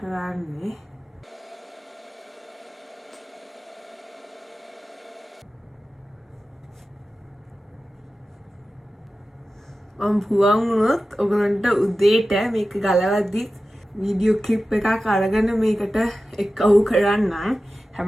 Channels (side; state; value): both; normal; correlation 0.94